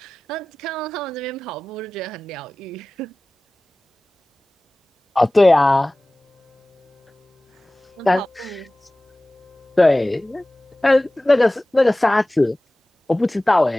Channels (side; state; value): both; normal; correlation 0.98